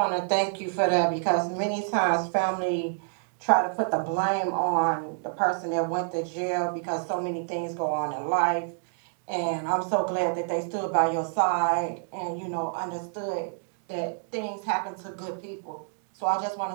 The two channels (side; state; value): left; silent; digital silence